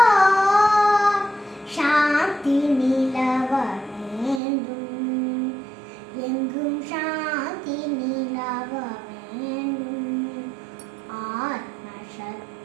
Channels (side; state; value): left; drops out; at 4.4 s